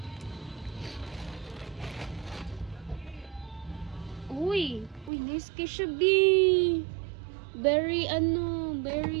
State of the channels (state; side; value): drops out; left; at 5.1 s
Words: Uy, nice kay siya, B. Very